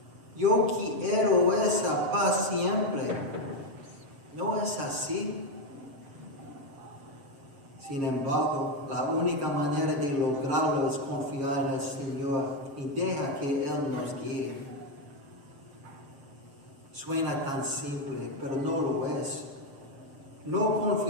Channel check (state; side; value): late; left; 7.2 ms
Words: Yo quiero esa paz siempre. ¿No es así? Sin embargo, la única manera de lograrlo es confiar en el Señor y deja que Él nos guíe. Suena tan simple, pero no lo es. No